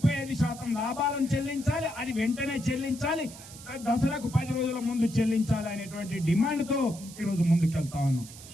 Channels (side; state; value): right; noise; hiss, 16 dB below the sound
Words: లాభాలను చెల్లించాలి, అది వెంటనే చెల్లించాలి, దసరాకు 10 రోజుల ముందు చెల్లించాలి అనేటువంటి డిమాండ్తో ఈరోజు ముందుకెళ్తా ఉన్నాం.